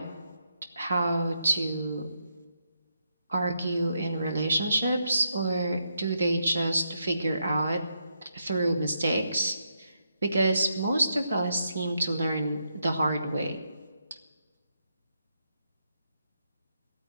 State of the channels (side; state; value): both; inverted; correlation -0.80